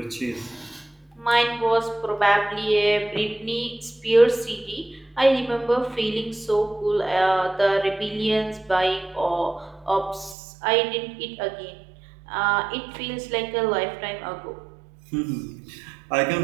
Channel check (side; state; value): left; drops out; at 10.4 s